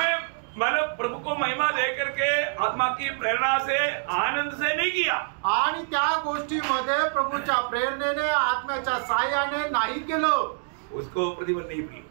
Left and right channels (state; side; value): silent; left; digital silence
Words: मतलब प्रभु को महिमा दे करके आत्मा की प्रेरणा से आनंद से नहीं किया, आणि त्या गोष्टीमध्ये प्रभूच्या प्रेरणेने आत्म्याच्या साह्याने नाही केलं, उसको प्रतिफल नहीं मिलेगा,